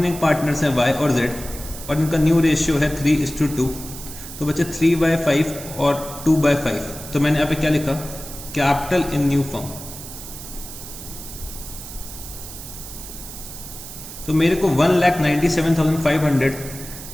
पार्टनर्स हैं y और z और इनका न्यू रेशियो है 3:2। तो बच्चे 3/5 और 2/5। तो मैंने यहाँ पे क्या लिखा, कैपिटल इन न्यू फर्म। तो मेरे को 1,97,500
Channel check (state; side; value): noise; right; hiss, 12 dB below the sound